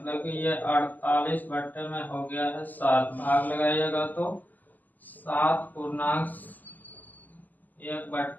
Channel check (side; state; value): right; late; 0.083 ms